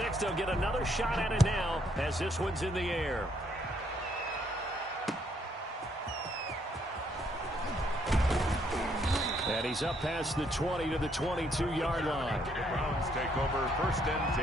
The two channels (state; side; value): normal; both; correlation 0.70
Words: They'll get another shot at it now as this one's in the air. And he's up past the 20 to the 22-yard line. The Browns take over 1st and